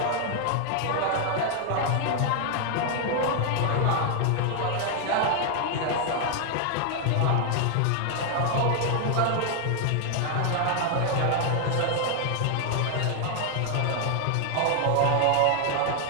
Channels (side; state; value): both; different; correlation 0.00